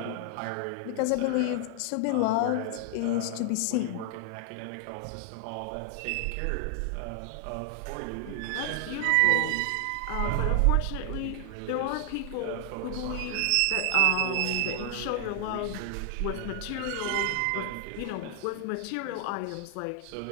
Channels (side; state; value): both; different; correlation 0.00